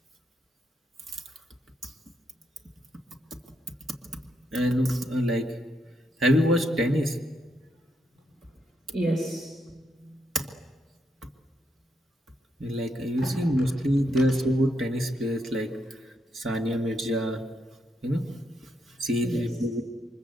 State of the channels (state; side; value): normal; both; correlation 0.79